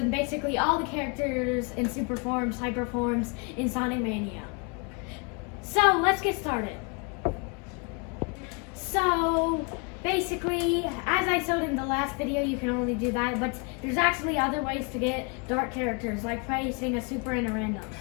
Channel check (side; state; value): right; quieter; 33.8 dB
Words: basically all the characters in super forms, hyper forms in Sonic Mania. So let's get started. So basically, as I showed in the last video, you can only do that, but there's actually other ways to get dark characters, like placing a super in a random.